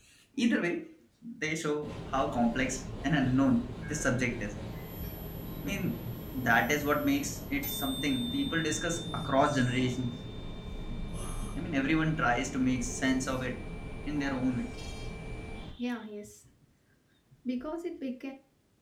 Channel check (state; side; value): identical; both; correlation 1.00